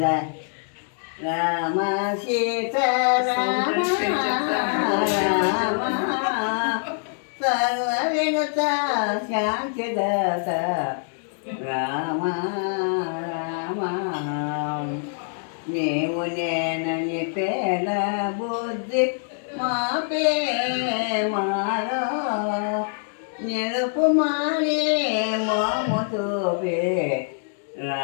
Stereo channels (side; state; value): right; silent; digital silence